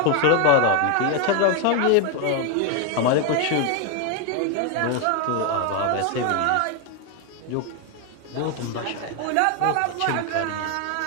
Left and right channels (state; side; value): different; both; correlation 0.01